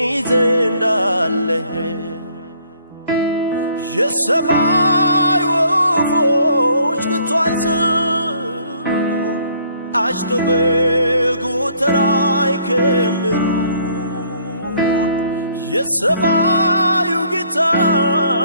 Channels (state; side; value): inverted; both; correlation -0.63